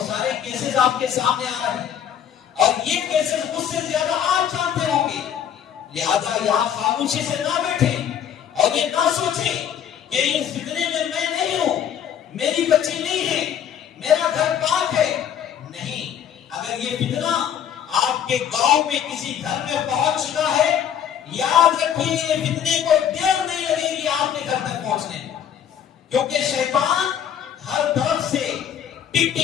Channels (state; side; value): quieter; right; 9.1 dB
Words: سارے کیسز آپ کے سامنے آ رہے ہیں اور یہ کیسز مجھ سے زیادہ آپ جانتے ہوں گے. لہذا یہاں خاموشی سے نہ بیٹھیں اور یہ نہ سوچیں کہ اس فتنے میں میں نہیں ہوں، میری بچی نہیں ہے، میرا گھر پاک ہے. نہیں، اگر یہ فتنہ آپ کے گاؤں میں کسی گھر میں پہنچ چکا ہے، یاد رکھیں یہ فتنے کو دیر نہیں لگے گی آپ کے گھر تک پہنچنے میں. کیونکہ شیطان ہر طرف سے ٹک